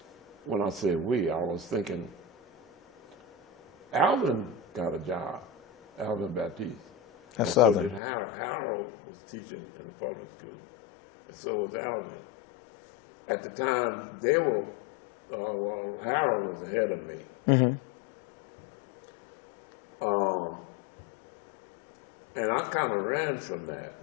when I say we, I was thinking, Alvin got a job, Alvin Baptiste. That's And so Southern. did Harold. Harold was teaching in the public school, and so was Alvin. At the time, they were, Harold was ahead of me. And I kind of ran from that.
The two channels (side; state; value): right; drops out; at 8.0 s